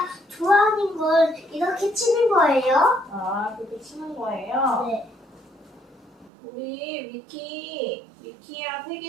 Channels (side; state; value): left; drops out; at 6.3 s